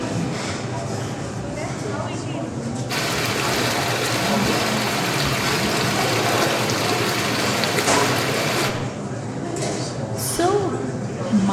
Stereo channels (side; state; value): both; identical; correlation 1.00